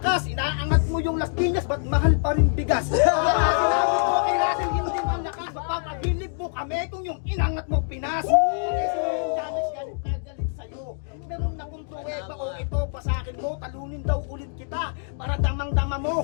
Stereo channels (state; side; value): silent; right; 62 dB below the other